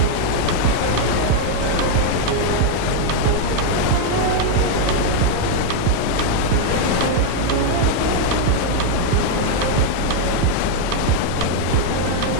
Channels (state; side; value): different; both; correlation 0.00